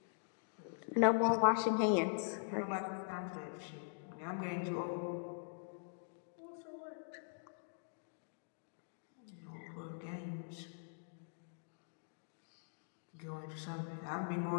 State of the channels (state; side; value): silent; right; digital silence